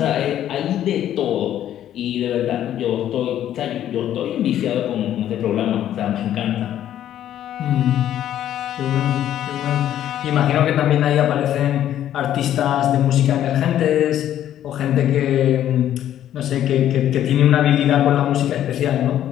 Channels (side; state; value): right; quieter; 11.4 dB